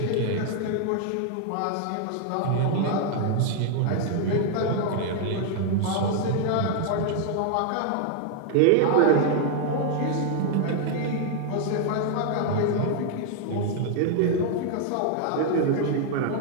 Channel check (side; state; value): both; different; correlation 0.00